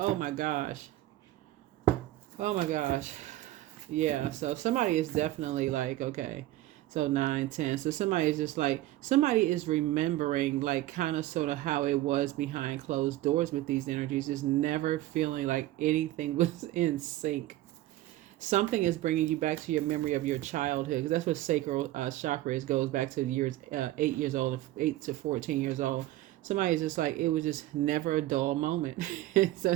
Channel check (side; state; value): left; quieter; 15.9 dB